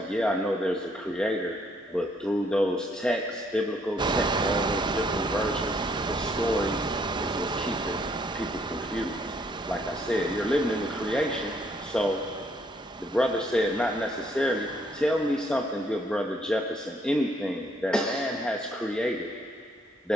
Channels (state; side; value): normal; both; correlation 0.68